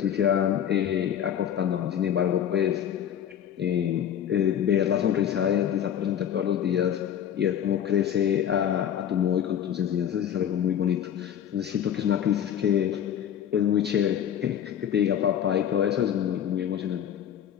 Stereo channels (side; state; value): right; quieter; 9.6 dB